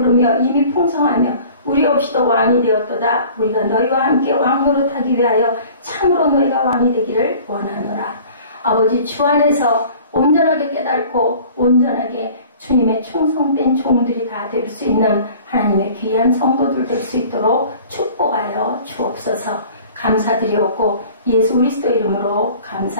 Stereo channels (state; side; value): inverted; both; correlation -0.47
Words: 이미 풍성하며 우리 없이도 왕이 되었도다. 우리가 너희와 함께 왕노릇하기 위하여 참으로 너희가 왕이 되기를 원하노라. 아버지, 주 안에서 온전하게 깨닫고 온전하게 주님의 충성된 종들이 다 될 수 있는 하나님의 귀한 성도들 될 수 있도록 축복하여 주옵소서. 감사드리옵고 예수 그리스도 이름으로